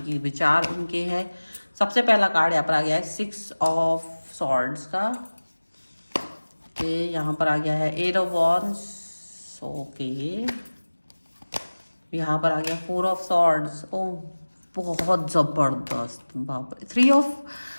विचार उनके हैं। सबसे पहला कार्ड यहाँ पर आ गया है 6 ऑफ सॉर्ड्स का। यहाँ पर आ गया है 8 ऑफ वॉन्ड्स। ओके, यहाँ पर आ गया 4 ऑफ सॉर्ड्स। ओ बहुत जबरदस्त, बाप रे। 3 ऑफ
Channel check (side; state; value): both; inverted; correlation -1.00